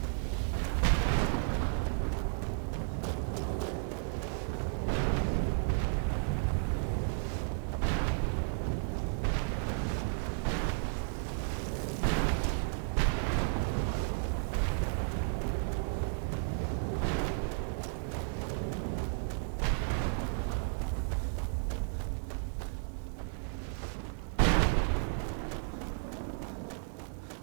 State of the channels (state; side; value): silent; left; digital silence